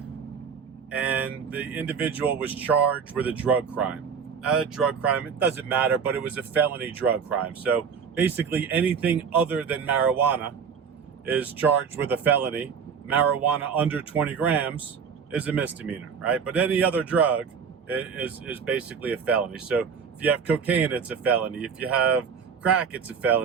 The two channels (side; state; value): left; quieter; 6.5 dB